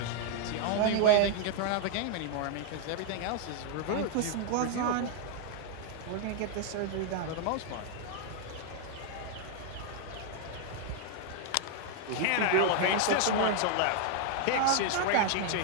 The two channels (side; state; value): both; different; correlation 0.00